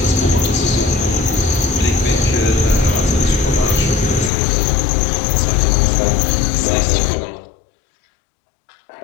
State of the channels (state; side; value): drops out; right; at 4.3 s